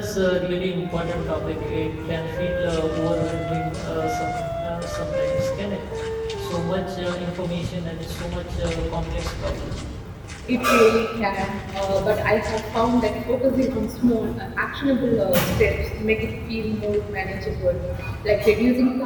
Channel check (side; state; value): both; identical; correlation 1.00